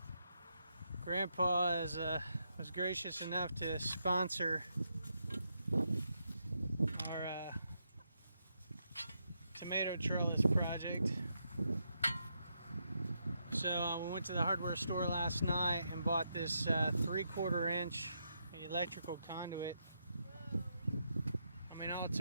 Grandpa was gracious enough to sponsor our tomato trellis project. So we went to the hardware store last night and bought this 3/4 inch electrical conduit. I mean, all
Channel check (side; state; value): both; inverted; correlation -0.81